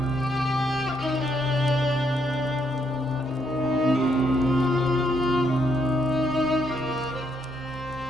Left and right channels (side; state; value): both; normal; correlation 0.75